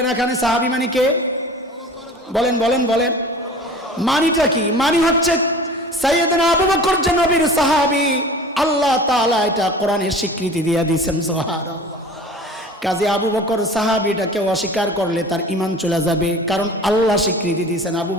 এখানে সাহাবী মানে কে? বলেন বলেন বলেন, মানিটা কি? মানি হচ্ছে সাইয়েদনা আবু বকর যে নবীর সাহাবী, আল্লাহ তাআলা এটা কোরআনে স্বীকৃতি দিয়ে দিয়েছেন, সুবহানাল্লাহ। কাজে আবু বকর সাহাবীটাকে অস্বীকার করলে তার ঈমান চলে যাবে, কারণ আল্লাহ স্বীকৃতি দিয়েছেন আবু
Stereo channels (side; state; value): both; normal; correlation 0.41